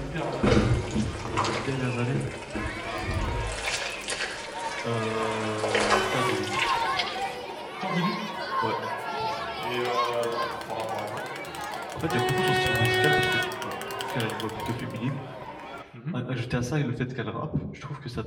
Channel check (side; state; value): both; identical; correlation 1.00